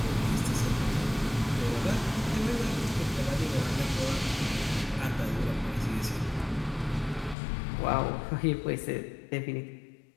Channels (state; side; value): drops out; right; at 7.4 s